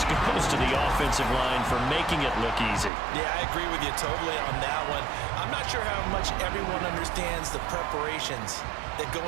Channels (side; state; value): left; drops out; at 2.9 s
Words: goes to the offensive line for making it look easy. Yeah, I agree with you totally on that one. I'm not sure how much everyone understands the preparations that go